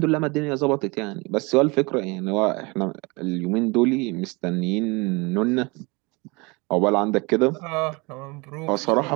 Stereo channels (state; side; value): quieter; left; 26.8 dB